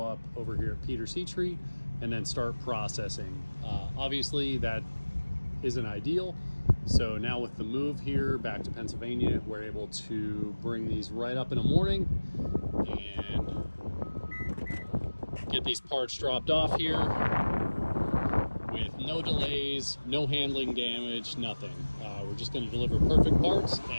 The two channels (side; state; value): both; inverted; correlation -1.00